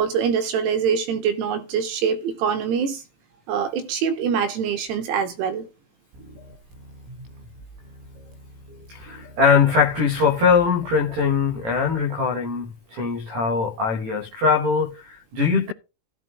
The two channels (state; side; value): late; left; 18 ms